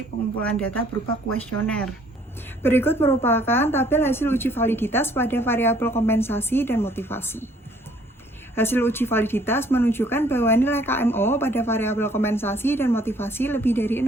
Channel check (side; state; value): both; normal; correlation 0.60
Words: pengumpulan data berupa kuesioner. Berikut merupakan tabel hasil uji validitas pada variabel kompensasi dan motivasi. Hasil uji validitas menunjukkan bahwa nilai KMO pada variabel kompensasi dan motivasi lebih dari